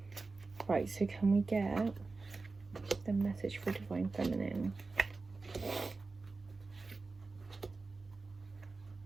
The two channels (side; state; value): left; quieter; 3.8 dB